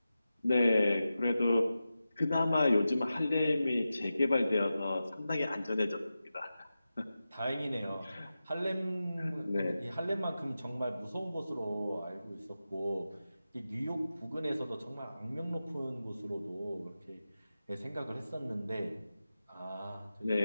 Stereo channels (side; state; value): both; inverted; correlation -0.92